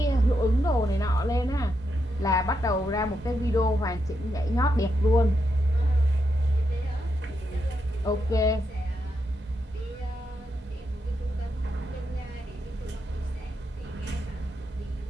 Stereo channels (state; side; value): normal; both; correlation 0.83